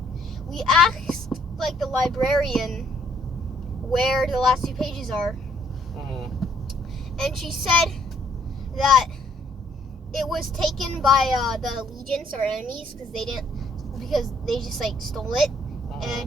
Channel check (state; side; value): normal; both; correlation 0.66